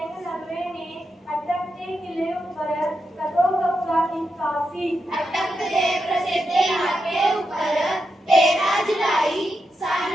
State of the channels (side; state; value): both; normal; correlation 0.86